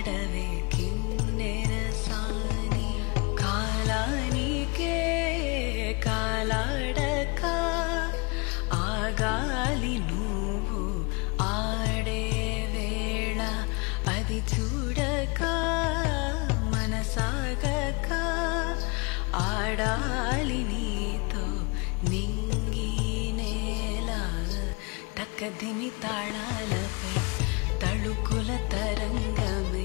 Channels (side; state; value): right; quieter; 29.2 dB